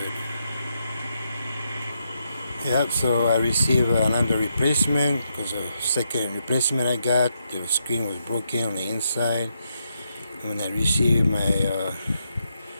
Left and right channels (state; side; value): inverted; both; correlation -0.81